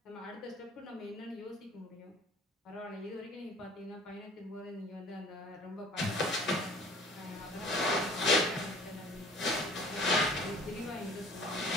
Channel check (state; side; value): normal; both; correlation 0.51